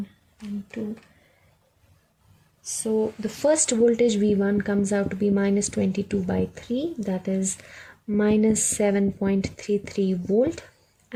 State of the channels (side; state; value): both; identical; correlation 1.00